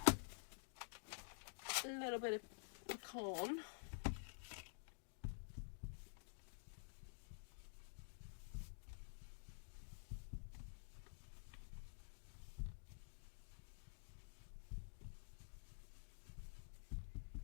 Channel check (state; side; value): silent; right; digital silence